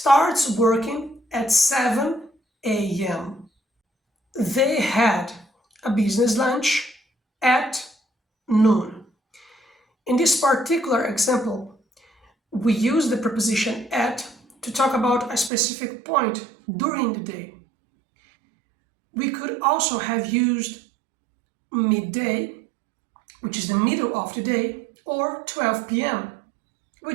working at 7 a.m. They had a business lunch at noon. In this particular example, we use the preposition at to talk about a specific point during the day. We could also have used midday, which is the middle of the day, or 12 p.m.,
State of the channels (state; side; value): drops out; left; at 15.5 s